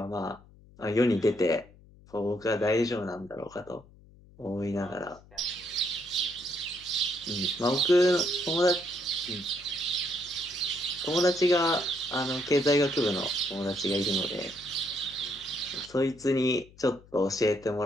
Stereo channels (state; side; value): noise; left; hum, 24 dB below the sound